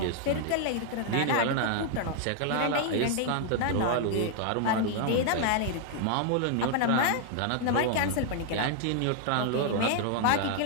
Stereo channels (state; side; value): different; both; correlation 0.00